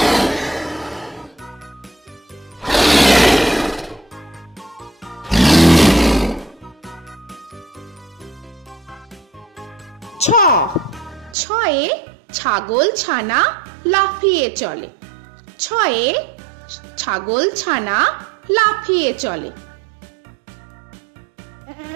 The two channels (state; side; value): drops out; left; at 11.4 s